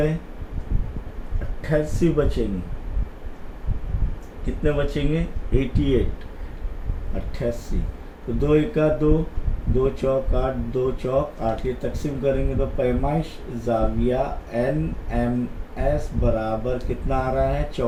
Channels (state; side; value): identical; both; correlation 1.00